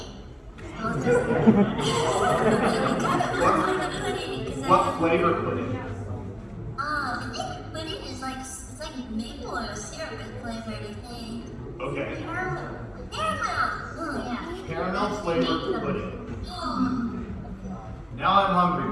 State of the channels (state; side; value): identical; both; correlation 1.00